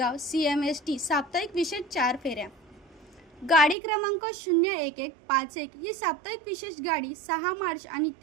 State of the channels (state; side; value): drops out; left; at 3.8 s